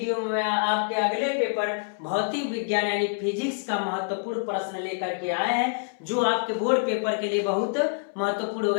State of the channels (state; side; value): silent; right; 61 dB below the other